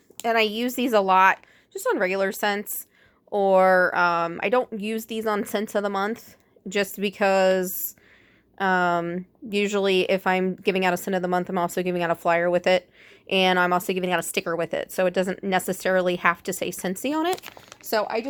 and I use these a lot just on regular scents, or I don't use these on scents of the month just because usually if I'm giving out a scent of the month, I'm also giving out a flyer with it, and I'm also giving out a sticker with it, so it doesn't necessarily have to say Scentsy on it. So I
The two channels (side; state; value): both; identical; correlation 1.00